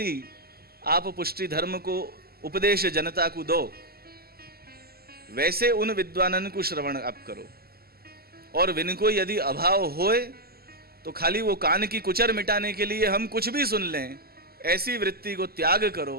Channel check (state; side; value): late; left; 0.45 ms